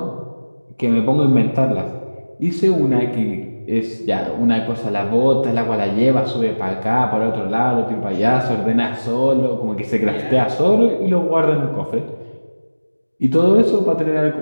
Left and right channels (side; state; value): both; inverted; correlation -1.00